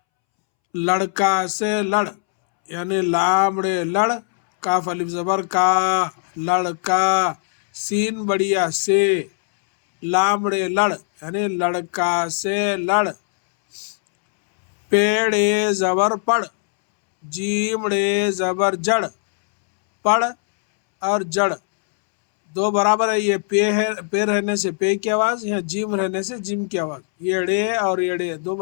لڑکا سے لڑ یعنی لامڑے لڑ، کاف الف زبر کا، لڑکا، سین بڑیا سے، لامڑے لڑ یعنی لڑکا سے لڑ، پیڑے زبر پڑ، جیمڑے زبر جڑ، پڑ اور جڑ دو برابر ہے۔ یہ پے رہنے سے پے کی آواز، یہاں جیم رہنے سے جیم کی آواز، یڑے اور یڑے دو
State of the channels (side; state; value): right; silent; 65 dB below the other